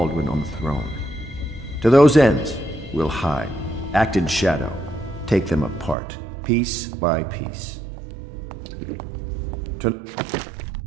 on the throne. To those ends, we'll hide, act in shadow, take them apart, piece by piece.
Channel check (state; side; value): drops out; left; at 6.0 s